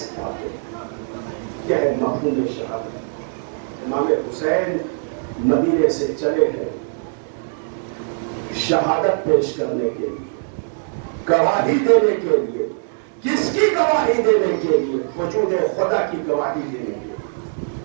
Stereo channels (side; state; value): left; silent; 65 dB below the other